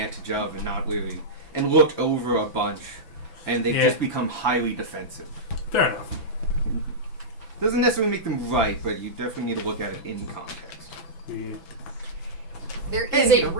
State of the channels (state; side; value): late; right; 6.0 ms